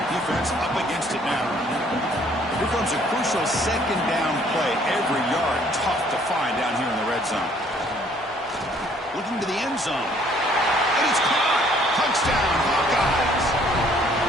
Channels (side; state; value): both; normal; correlation 0.61